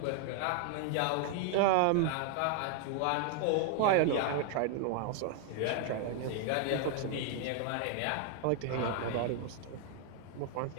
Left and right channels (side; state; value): both; different; correlation 0.00